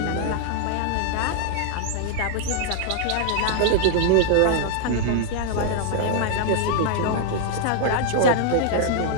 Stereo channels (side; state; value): both; different; correlation -0.01